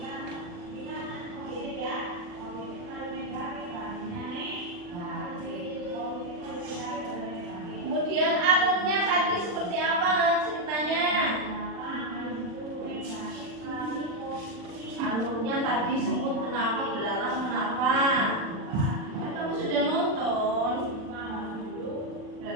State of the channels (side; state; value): left; late; 40 ms